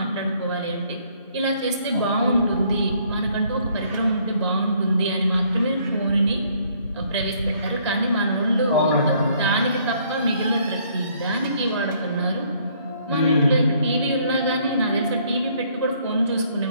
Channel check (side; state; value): both; inverted; correlation -0.65